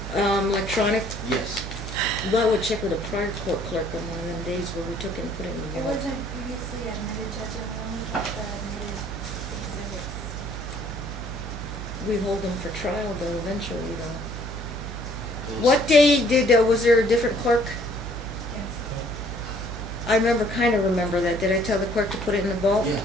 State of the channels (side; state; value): right; noise; hum, 8 dB below the sound